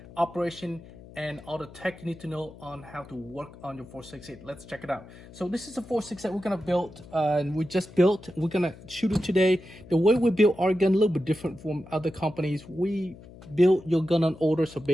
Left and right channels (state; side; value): noise; left; hum, 19 dB below the sound